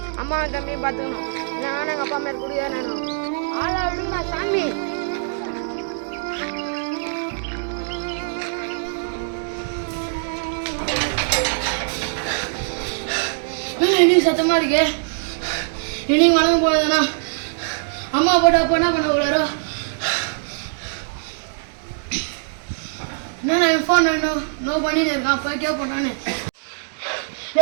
அம்மாவை தம்பியும் பார்த்துக்கணும். இல்லைன்னா எங்கள் அப்பா மேலே குடிக்கார வேணும். ஆளா விடுங்க சாமி. இன்னைக்கு சத்தமா இருக்கு. இன்னைக்கு வளர்ந்து போனதுன்னா அம்மா போட்டு அப்போ என்ன பண்ண கூடாரோ. என்ன நான் ஃபோன் நோ பண்ணிட்டு இருக்கான். போய் கேட்போம் நானு.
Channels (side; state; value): left; silent; digital silence